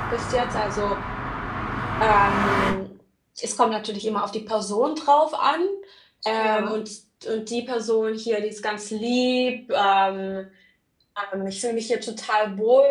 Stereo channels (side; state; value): both; identical; correlation 1.00